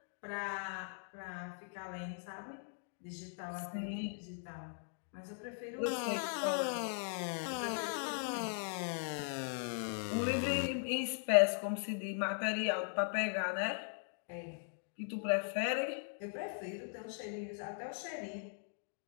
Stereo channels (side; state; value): right; silent; digital silence